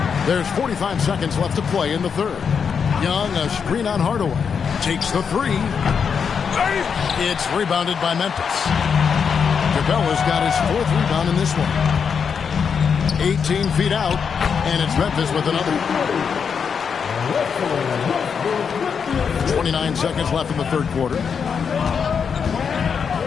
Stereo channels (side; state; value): right; quieter; 6.5 dB